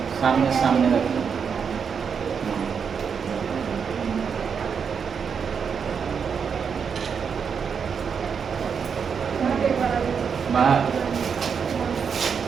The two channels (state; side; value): quieter; left; 6.5 dB